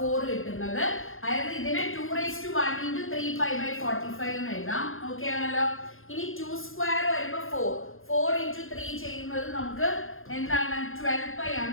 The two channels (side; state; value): right; late; 0.60 ms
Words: കിട്ടുന്നത്. അതായത് ഇതിനെ 2 raised to 1 into 3 pi by 45 എന്ന് എഴുതാം. ഓക്കെ ആണല്ലോ. ഇനി 2 സ്ക്വയർ വരുമ്പോൾ 4 into 3 ചെയ്യുന്നത് നമുക്ക് എന്താണ് 12 pi